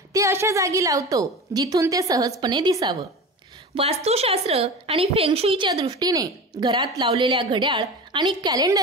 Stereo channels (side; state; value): both; normal; correlation 0.31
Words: ते अशा जागी लावतो जिथून ते सहजपणे दिसावं. वास्तुशास्त्र आणि फेंगशुईच्या दृष्टीने घरात लावलेल्या घड्याळ आणि